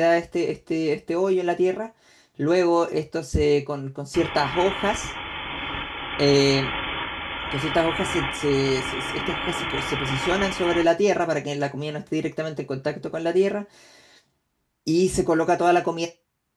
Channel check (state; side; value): identical; both; correlation 1.00